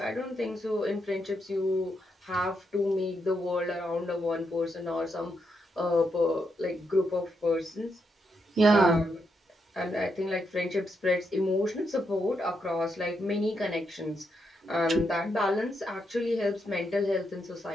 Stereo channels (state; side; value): normal; both; correlation 0.81